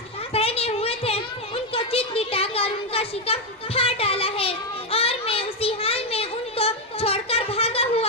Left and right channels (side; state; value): both; normal; correlation 0.05